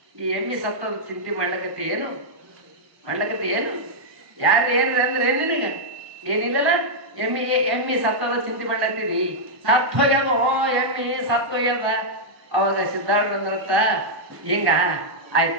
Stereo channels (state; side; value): late; left; 1.2 ms